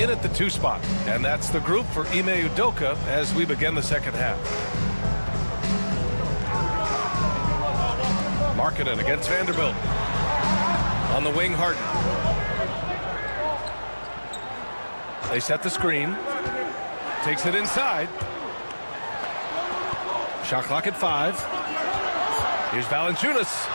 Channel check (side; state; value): both; inverted; correlation -1.00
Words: at the 2 spot. And that's the group for Ime Udoka as we begin the second half. Markkanen against Vanderbilt. On the wing, Harden. They set the screen. Takes it inside. Shot clock at 5. Here's Valanciunas.